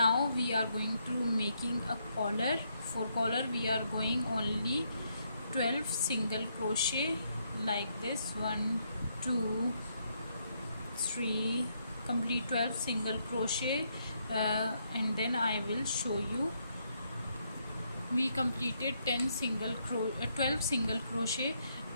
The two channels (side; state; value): both; inverted; correlation -0.76